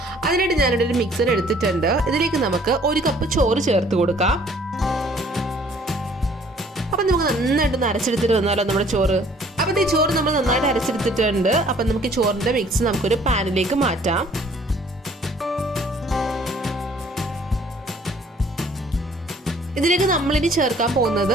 അതിനായിട്ട് ഞാനിവിടെ ഒരു മിക്സർ എടുത്തിട്ടുണ്ട്. ഇതിലേക്ക് നമുക്ക് 1 കപ്പ് ചോറ് ചേർത്ത് കൊടുക്കാം. അപ്പം നമുക്ക് നന്നായിട്ടൊന്ന് അരച്ചെടുത്തിട്ട് വന്നാലോ നമ്മുടെ ചോറ്. അപ്പം ഈ ചോറ് നമ്മൾ നന്നായിട്ട് അരച്ചെടുത്തിട്ടുണ്ട്. അപ്പം നമുക്ക് ഈ ചോറിൻ്റെ മിക്സ് നമുക്കൊരു പാനിലേക്ക് മാറ്റാം. ഇതിലേക്ക് നമ്മളിനി ചേർക്കാൻ പോകുന്നത്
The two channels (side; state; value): both; normal; correlation 0.57